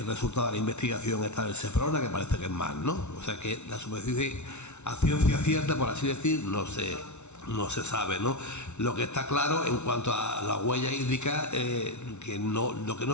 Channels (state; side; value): late; right; 0.82 ms